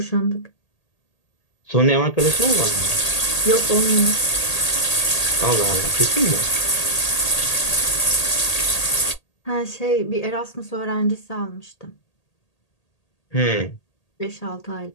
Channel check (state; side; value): late; right; 1.8 ms